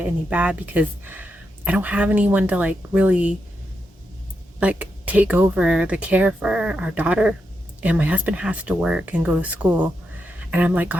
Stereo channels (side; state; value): both; normal; correlation 0.85